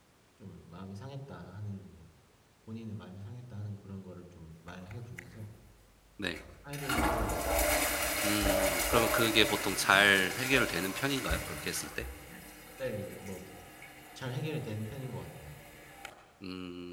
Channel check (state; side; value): identical; both; correlation 1.00